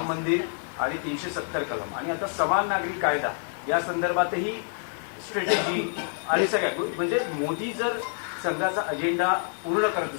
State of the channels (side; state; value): right; silent; 60 dB below the other